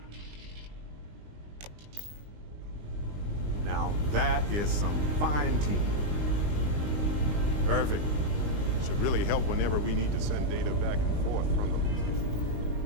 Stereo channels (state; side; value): late; left; 20 ms